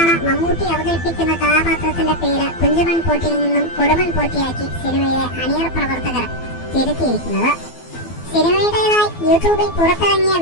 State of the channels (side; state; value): right; late; 12 ms